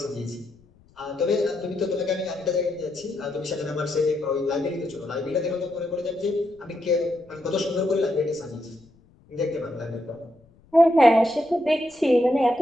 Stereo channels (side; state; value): left; noise; rumble, 30 dB below the sound